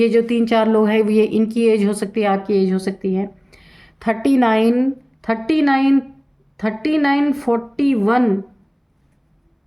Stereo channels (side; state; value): both; identical; correlation 1.00